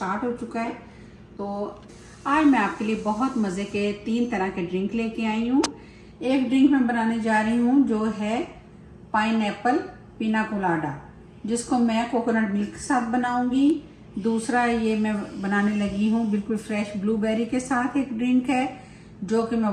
हो चुका है, तो आज मैं आपके लिए बहुत मज़े के 3 तरह के ड्रिंक लेके आई हूँ। एक ड्रिंक मैं बनाने जा रही हूँ जो है पाइनएप्पल पिना कोलाडा, जिसको मैं कोकोनट मिल्क के साथ बनाऊंगी। दूसरा ये मैं बनाने लगी हूँ बिल्कुल फ्रेश ब्लूबेरी के साथ एक ड्रिंक है, जो कि मैं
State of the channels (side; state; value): both; identical; correlation 1.00